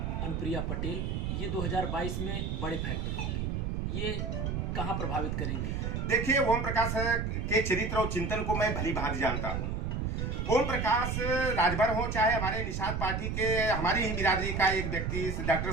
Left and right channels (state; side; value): noise; right; rumble, 1 dB below the sound